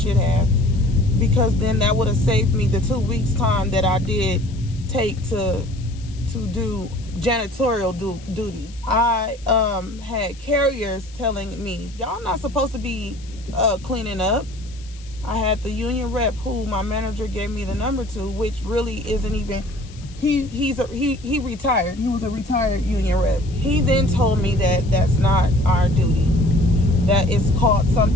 have, because then that would have saved me the 2 weeks time that I did take to do janitorial duties. I had carriers telling me, y'all not supposed to be cleaning up. I had the union rep who my manager gave me the number to, which really isn't even, he retired. He was a retired union rep. He then told me that that's not our duty. That it's called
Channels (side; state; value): left; noise; hiss, 23 dB below the sound